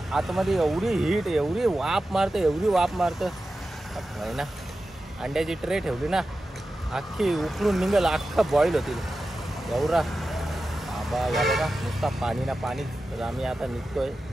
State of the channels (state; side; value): normal; both; correlation 0.93